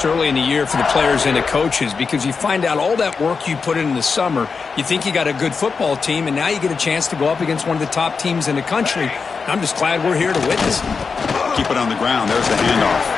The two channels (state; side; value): quieter; right; 5.1 dB